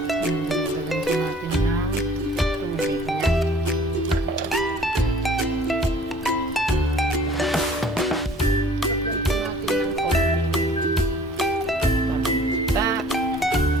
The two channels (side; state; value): both; normal; correlation 0.52